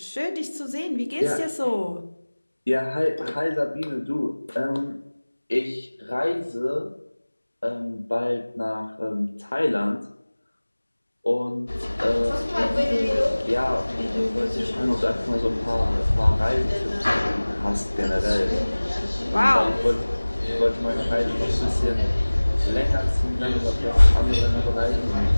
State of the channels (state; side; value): inverted; both; correlation -1.00